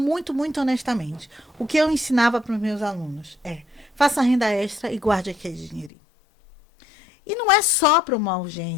muito honestamente. O que eu ensinava para os meus alunos é: faça renda extra e guarde aquele dinheirinho. E não é só para uma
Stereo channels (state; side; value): drops out; right; at 5.9 s